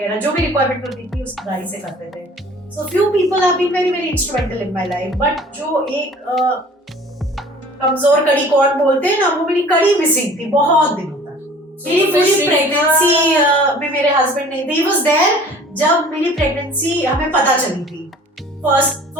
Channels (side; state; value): both; normal; correlation 0.48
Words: जो भी रिक्वायरमेंट होती थी उसकी गाड़ी से करते थे। So few people have been very very instrumental in my life, but जो एक कमजोर कड़ी कौन बोलते हैं ना, वो मेरी कड़ी मिसिंग थी बहुत दिनों तक। मेरी पूरी प्रेगनेंसी में मेरे हस्बैंड नहीं थे। ही वाज देयर जब मेरी प्रेगनेंसी हमें पता चली थी,